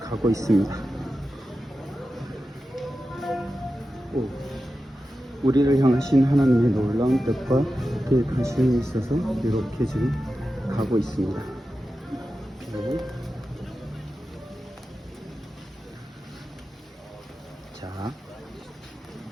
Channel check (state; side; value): normal; both; correlation 0.92